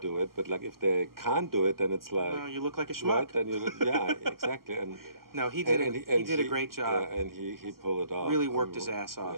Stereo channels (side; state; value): left; late; 0.92 ms